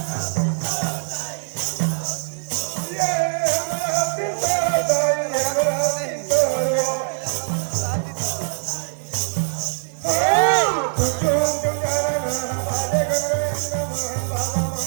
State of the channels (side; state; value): left; silent; digital silence